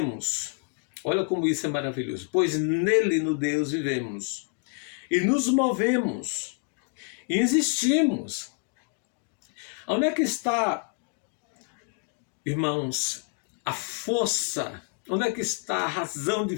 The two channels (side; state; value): right; quieter; 38.6 dB